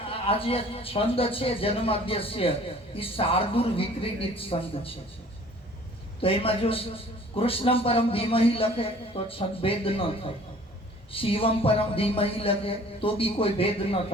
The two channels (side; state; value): both; normal; correlation 0.51